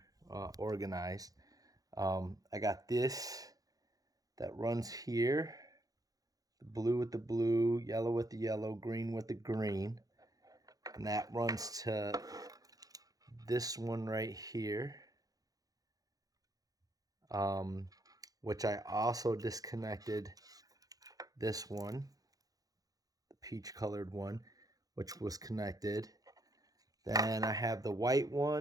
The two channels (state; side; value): late; left; 0.18 ms